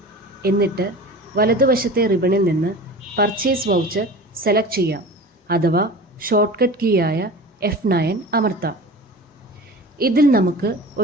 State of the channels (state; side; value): normal; both; correlation 0.37